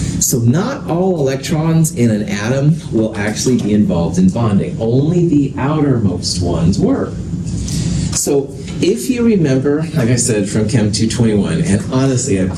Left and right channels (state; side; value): noise; right; hum, 29 dB below the sound